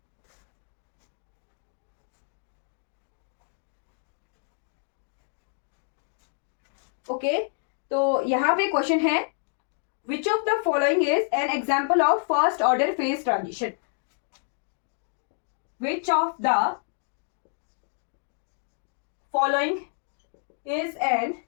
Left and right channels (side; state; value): right; silent; digital silence